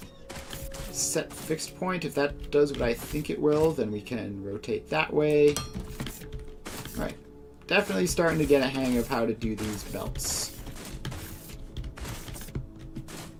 set fixed point. If that does what I think it will, then we can rotate that way. Alright, definitely starting to get a hang of how to do these belts.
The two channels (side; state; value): both; identical; correlation 1.00